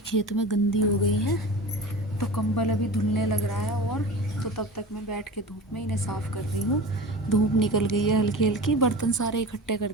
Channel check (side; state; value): both; normal; correlation 0.33